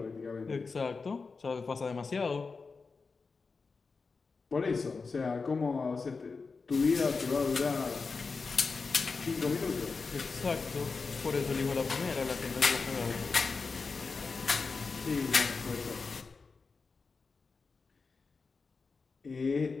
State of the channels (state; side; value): quieter; right; 4.5 dB